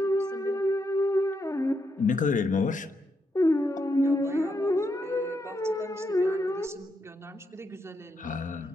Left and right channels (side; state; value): both; normal; correlation 0.81